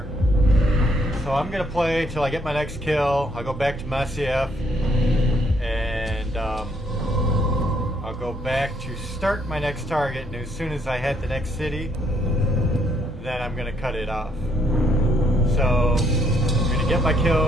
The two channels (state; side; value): normal; both; correlation 0.70